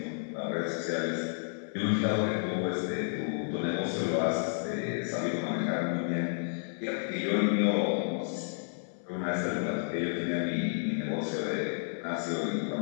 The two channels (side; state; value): right; silent; 57 dB below the other